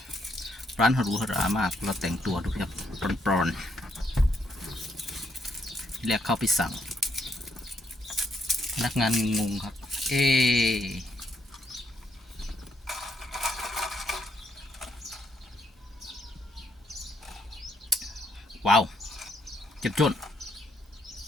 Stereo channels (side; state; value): both; normal; correlation 0.75